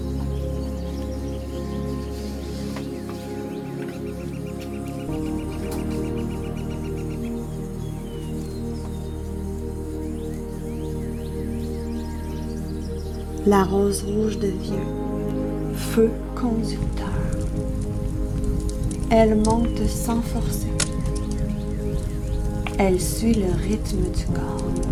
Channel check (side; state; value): both; identical; correlation 1.00